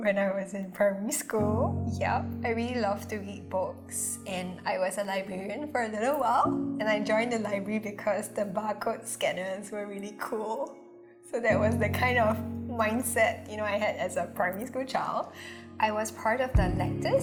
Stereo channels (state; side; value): identical; both; correlation 1.00